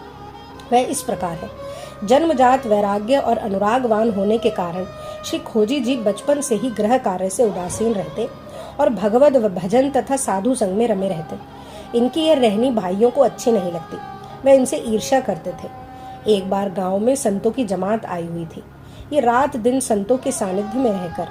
वह इस प्रकार है। जन्मजात वैराग्य और अनुरागवान होने के कारण श्री खोजी जी बचपन से ही गृह कार्य से उदासीन रहते और भगवद भजन तथा साधु संग में रमे रहते। इनकी यह रहनी भाइयों को अच्छी नहीं लगती, वे इनसे ईर्ष्या करते थे। एक बार गांव में संतों की जमात आई हुई थी। ये रात दिन संतों के सानिध्य में रहकर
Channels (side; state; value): both; identical; correlation 1.00